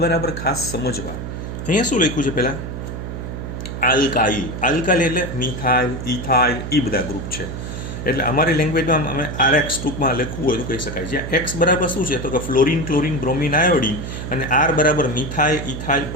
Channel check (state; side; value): noise; right; hum, 7 dB below the sound